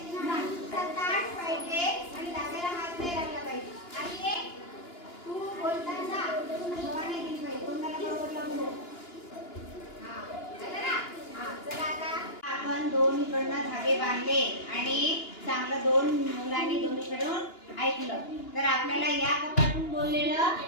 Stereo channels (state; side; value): late; right; 2.9 ms